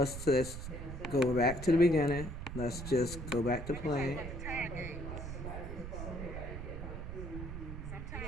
just go back to the beginning. Let's just go back to play. the time games.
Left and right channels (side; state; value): right; noise; rumble, 7 dB below the sound